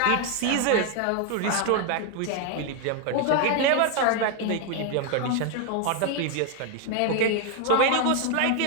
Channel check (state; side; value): different; both; correlation 0.01